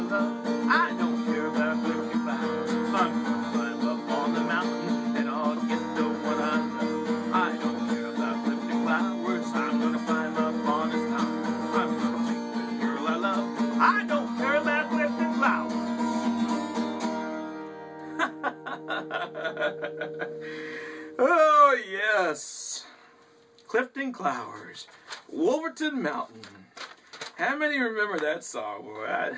I don't care about Clifton Flowers. I'm gonna climb up on the mountain, and I'll get the one I love. I don't care about Clifton Flowers. I'm gonna climb up on his mountain. I'm gonna take the girl I love. I don't care about Clifton Flowers. Oh yes, Clifton Flowers, Wolverton Mountain. How many remember that song? Boy,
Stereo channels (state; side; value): identical; both; correlation 1.00